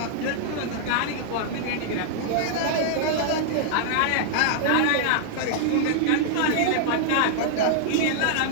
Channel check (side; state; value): both; different; correlation -0.01